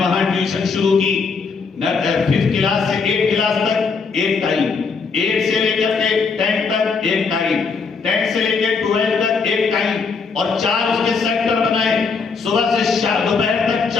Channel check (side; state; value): right; quieter; 5.0 dB